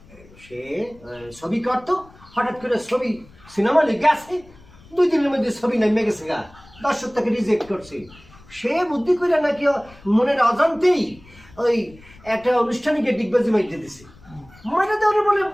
সে ছবি করতো, হঠাৎ করে ছবি সিনেমা হলে গেছে, 2 দিনের মধ্যে ছবি নেমে গেছে গা, দর্শক তাকে রিজেক্ট করছে। সে বুদ্ধি করে নাকি মনের অজান্তেই ওই একটা অনুষ্ঠানে গিয়ে ডিগবাজি মাইতে দিছে, মাইটা দেওয়ার বলে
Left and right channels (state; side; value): noise; left; rumble, 24 dB below the sound